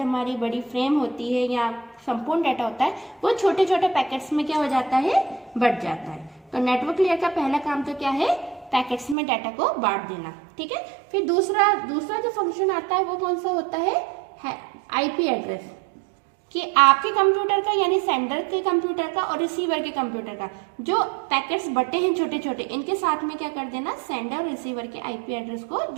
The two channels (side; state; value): left; drops out; at 9.2 s